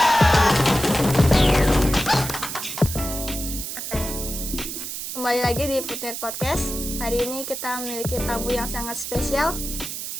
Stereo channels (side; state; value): right; noise; hiss, 6 dB below the sound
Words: Kembali lagi di Putmir Podcast. Hari ini kita memiliki tamu yang sangat spesial.